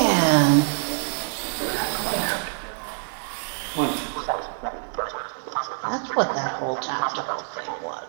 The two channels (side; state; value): left; silent; digital silence